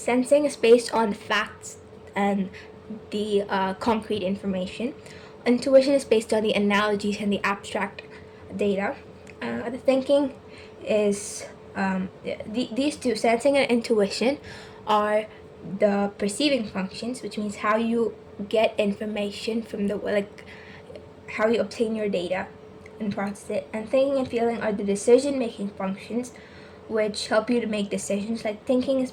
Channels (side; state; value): both; identical; correlation 1.00